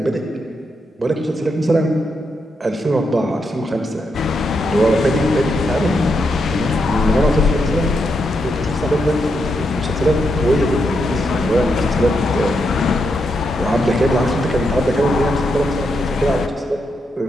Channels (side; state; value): both; normal; correlation 0.82